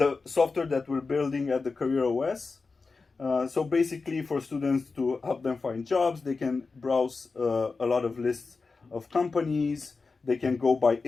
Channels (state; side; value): quieter; right; 4.2 dB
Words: software that we're building at the Career OS. So basically, for students to help them find jobs, they can browse a lot of lists of companies. They can go by